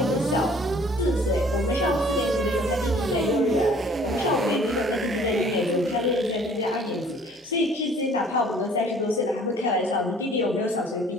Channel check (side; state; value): both; normal; correlation 0.54